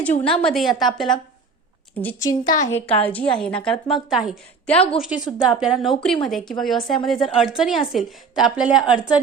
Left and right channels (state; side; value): quieter; left; 4.8 dB